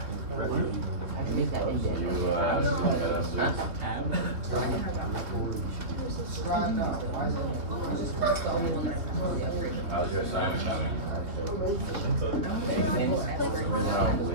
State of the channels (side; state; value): left; late; 3.0 ms